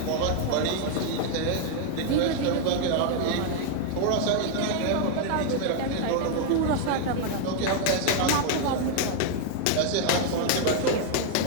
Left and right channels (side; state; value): both; different; correlation 0.00